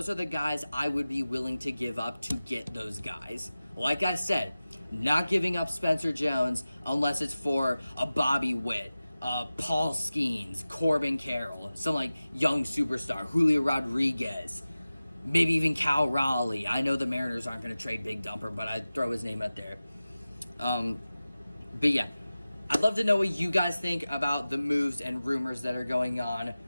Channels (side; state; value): both; inverted; correlation -0.96